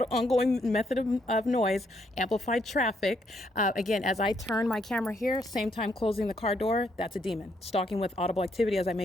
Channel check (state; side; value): normal; both; correlation 0.73